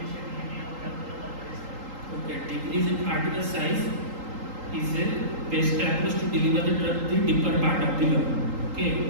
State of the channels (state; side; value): late; left; 3.8 ms